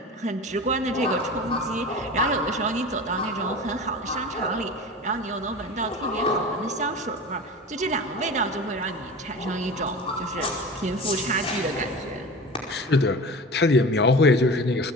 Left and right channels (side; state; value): both; normal; correlation 0.33